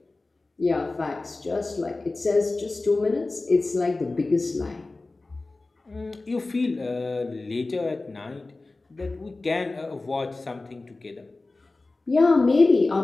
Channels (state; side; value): quieter; right; 3.3 dB